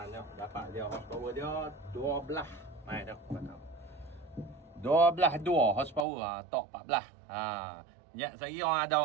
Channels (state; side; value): drops out; left; at 6.1 s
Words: tengok, dapat dia horsepower dia 12. Mai dah patut. 12 horsepower, torque 14. Ya, saya orang ada